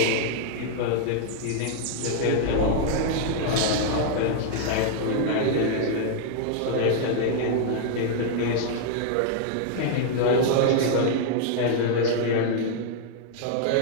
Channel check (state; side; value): different; both; correlation 0.00